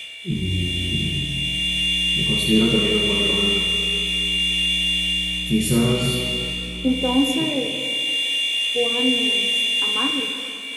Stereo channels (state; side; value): identical; both; correlation 1.00